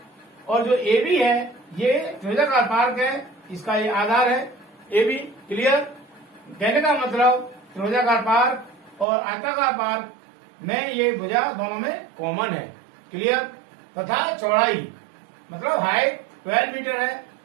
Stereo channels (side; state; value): left; drops out; at 9.1 s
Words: और जो ए बी है ये त्रिभुजाकार पार्क है, इसका ये आधार है ए बी। क्लियर? कहने का मतलब त्रिभुजाकार पार्क और आयताकार पार्क में ये भुजा दोनों में कॉमन है। क्लियर? तथा चौड़ाई मतलब हाइट 12 मीटर है।